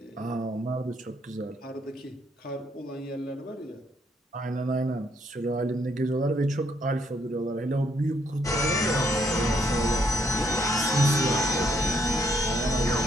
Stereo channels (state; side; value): normal; both; correlation 0.71